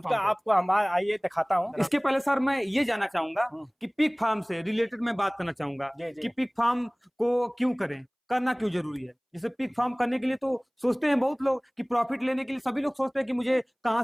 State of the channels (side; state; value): both; identical; correlation 1.00